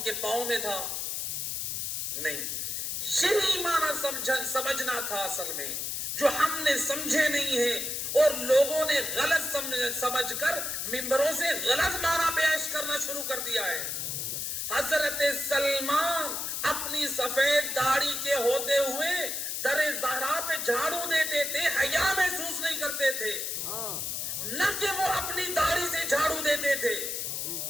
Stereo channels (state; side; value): noise; left; hiss, 2 dB below the sound